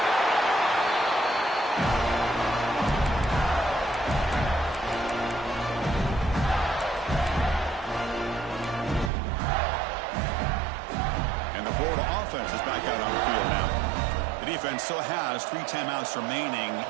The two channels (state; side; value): drops out; left; at 9.1 s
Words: Offense is back out on the field now. The defense still has 3 timeouts remaining.